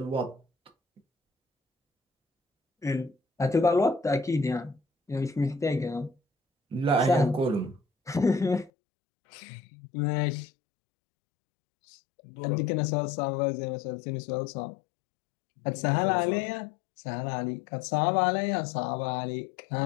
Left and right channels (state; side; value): drops out; right; at 8.7 s